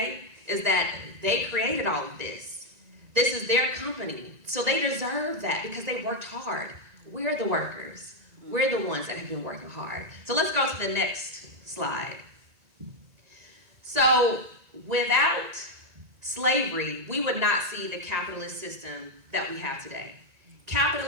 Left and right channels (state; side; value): late; left; 1.9 ms